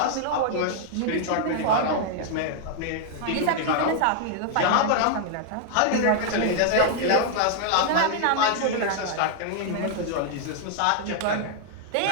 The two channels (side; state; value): both; different; correlation 0.00